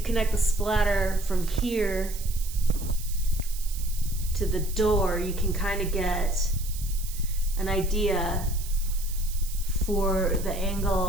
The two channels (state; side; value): noise; right; hiss, 13 dB below the sound